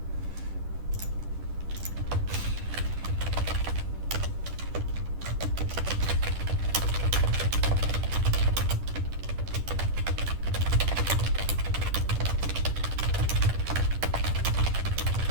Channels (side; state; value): left; late; 10 ms